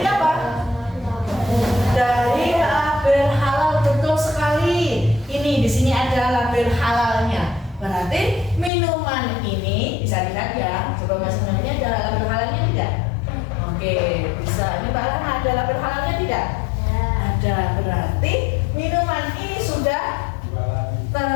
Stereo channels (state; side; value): drops out; right; at 8.7 s